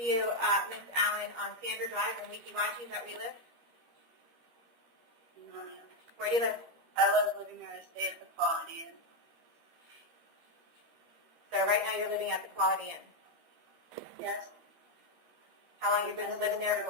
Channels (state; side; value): late; left; 13 ms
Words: Ms. Allen, on Sandra Drive in Weeki-Wachi. Is that where you live? No, ma'am. Where do you live? I was living there to stay at the Quality Inn. So right now you're living at the Quality Inn. Yes. How long have you been living there